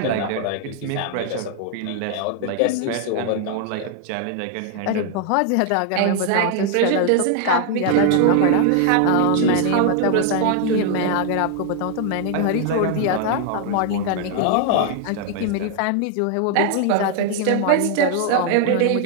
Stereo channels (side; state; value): both; different; correlation 0.00